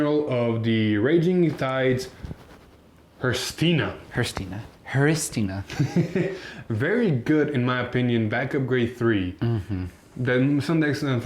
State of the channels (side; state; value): both; identical; correlation 1.00